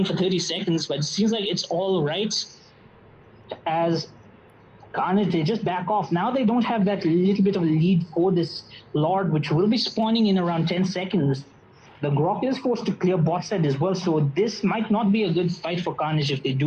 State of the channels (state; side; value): identical; both; correlation 1.00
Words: for 30 seconds, but it seems like it's all right as Carnage, they just back off. Now they don't have that little bit of a lead for this Lord, which will be spawning in around 10 seconds. The Grok is forced to clear bot side as well, so this might not be a good fight for Carnage if they